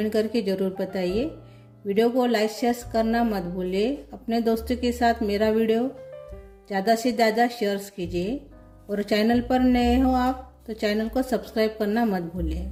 करके ज़रूर बताइए। वीडियो को लाइक शेयर करना मत भूलिए। अपने दोस्तों के साथ मेरा वीडियो ज़्यादा से ज़्यादा शेयर कीजिए। और चैनल पर नए हो आप तो चैनल को सब्सक्राइब करना मत भूलिए।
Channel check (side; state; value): both; identical; correlation 1.00